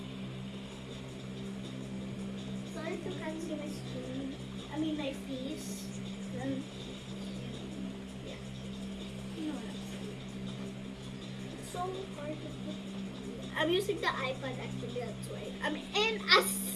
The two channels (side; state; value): both; identical; correlation 1.00